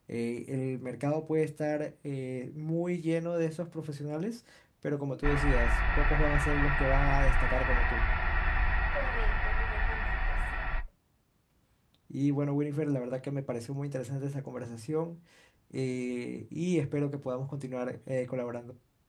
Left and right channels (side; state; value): both; identical; correlation 1.00